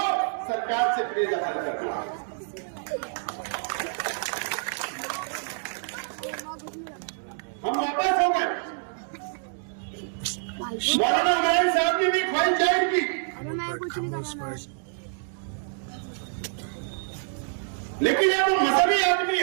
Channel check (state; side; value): silent; left; digital silence